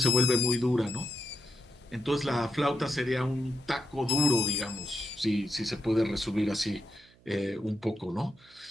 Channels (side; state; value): right; noise; hum, 28 dB below the sound